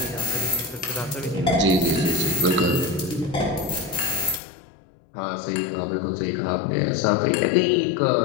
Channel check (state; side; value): drops out; right; at 4.4 s